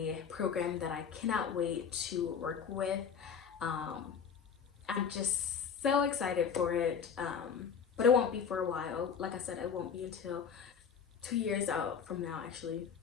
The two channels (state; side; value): quieter; right; 6.8 dB